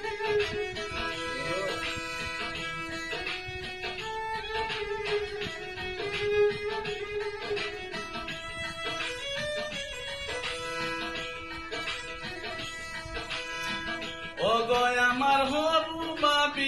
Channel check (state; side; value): identical; both; correlation 1.00